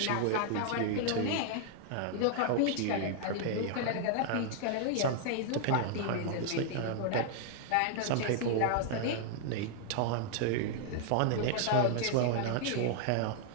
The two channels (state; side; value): different; both; correlation 0.00